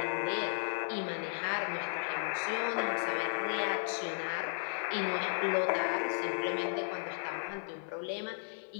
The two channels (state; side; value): silent; right; 55 dB below the other